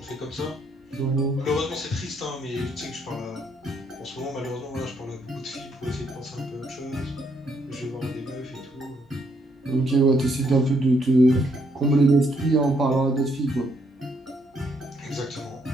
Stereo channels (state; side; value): normal; both; correlation 0.72